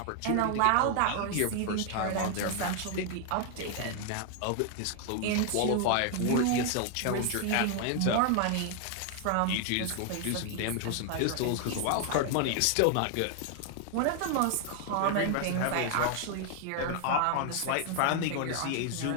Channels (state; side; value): different; both; correlation 0.00